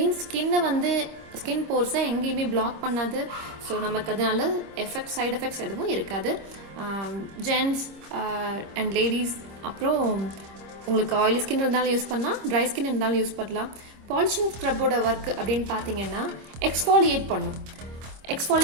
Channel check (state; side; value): late; left; 25 ms